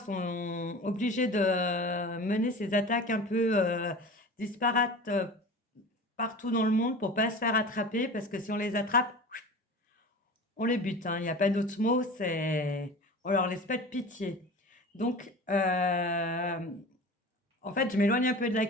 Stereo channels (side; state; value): both; normal; correlation 0.36